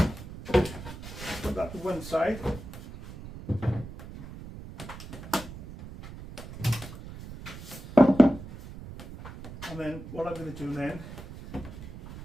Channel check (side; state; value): right; noise; rumble, 13 dB below the sound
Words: Put that to one side. And then what I'm going to do then